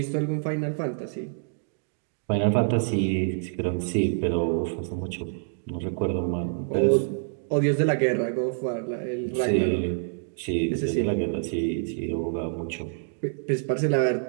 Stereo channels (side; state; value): left; silent; digital silence